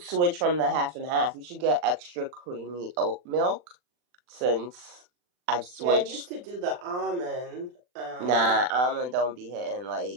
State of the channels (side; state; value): left; late; 40 ms